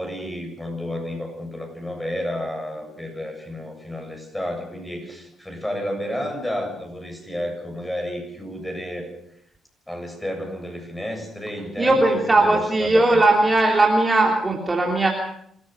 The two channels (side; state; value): both; normal; correlation 0.88